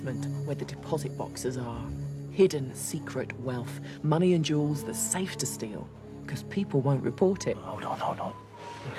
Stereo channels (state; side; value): identical; both; correlation 1.00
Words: where the deposit boxes are. Hidden, secret wealth. Money and jewels that's safe to steal. Because people won't report it. Hold on.